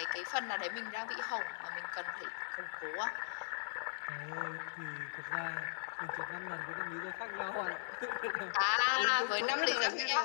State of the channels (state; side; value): silent; right; 52 dB below the other